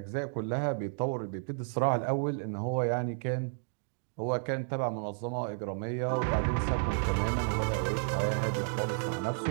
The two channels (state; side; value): silent; left; digital silence